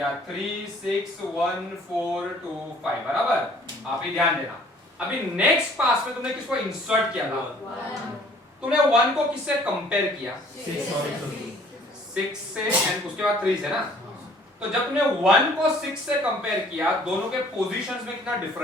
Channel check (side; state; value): both; normal; correlation 0.55